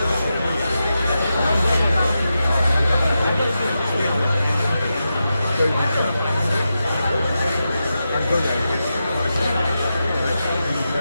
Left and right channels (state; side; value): inverted; both; correlation -0.89